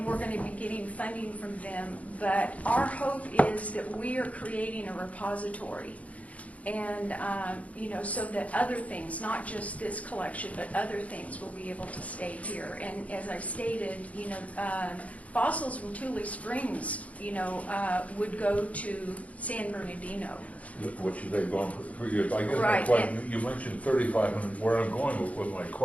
we're going to be getting funding from them. But our hope is that we are creating a repository, and so that other things, not just this collection, but other things will be able to stay here. And as I stated, fossils from Tule Springs, would go to San Bernardino. Which they've gone for years. I guess Right. my question, you mentioned 3,500. Where I'm going with my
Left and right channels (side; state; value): right; late; 0.068 ms